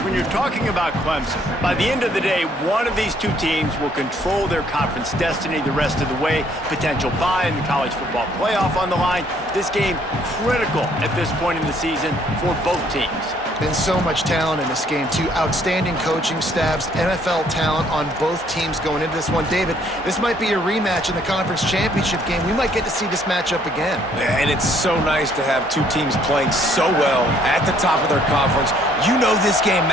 when you're talking about Clemson, by the end of the day, one of these two teams will control their conference destiny the rest of the way. Potential bye in the college football playoff on the line. This game critical at this point in the season for both teams. Been so much talent in this game, too. Outstanding coaching staffs, NFL talent on both teams going into this one. David, this might be a rematch in the conference championship game. We might get to see this matchup again. Yeah, and it's so nice to have two teams playing so well at the top of their conference. You know this game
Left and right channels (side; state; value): both; normal; correlation 0.65